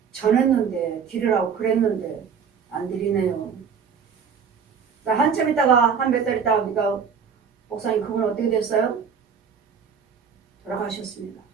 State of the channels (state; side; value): quieter; left; 6.6 dB